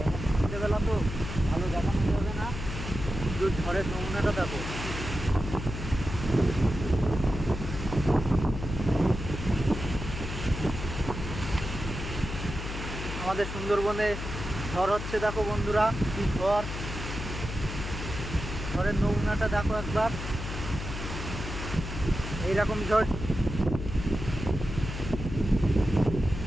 সন্ধ্যেবেলা তো ভালো দেখানো যাবে না, কিন্তু ঝড়ের নমুনাটা দেখো। আমাদের সুন্দরবনে ঝড় হচ্ছে দেখো বন্ধুরা, কি ঝড়। ঝড়ের নমুনাটা দেখো একবার। এইরকম ঝড়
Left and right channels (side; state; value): left; noise; hum, 6 dB below the sound